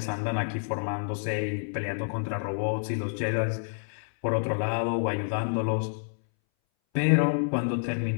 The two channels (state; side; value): silent; right; 59 dB below the other